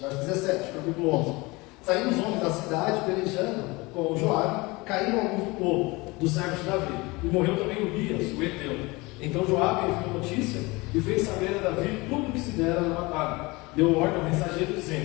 17, capítulo 11. Saindo os homens da cidade, pelejando com Joabe, caíram alguns do povo, dos servos de Davi, e morreu também Urias, o Eteu. Então Joabe enviou notícia e fez saber a Davi tudo o que se dera na batalha. Deu ordem ao mensageiro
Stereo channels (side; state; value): right; quieter; 23.7 dB